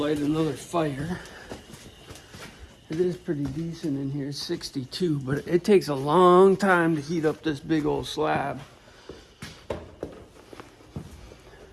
another fire. It is pretty decent in here, it's 62, but it takes a long time to heat up this big old slab.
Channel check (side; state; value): both; identical; correlation 1.00